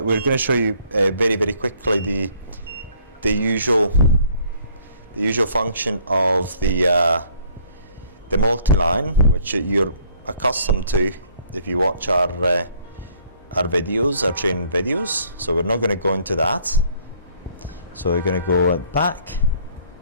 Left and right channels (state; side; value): inverted; both; correlation -0.61